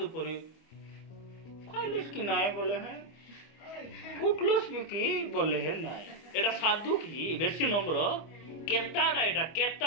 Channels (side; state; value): right; late; 25 ms